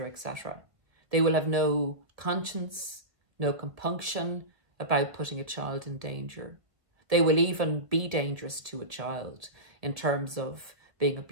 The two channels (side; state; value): left; late; 1.3 ms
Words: etc. They will have no conscience, no compunction about putting a child in danger. They will even be dangerous to a child in terms of being